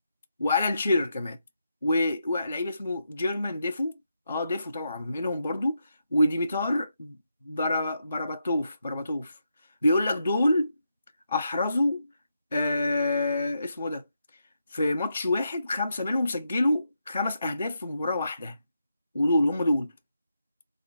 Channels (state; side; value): inverted; both; correlation -0.83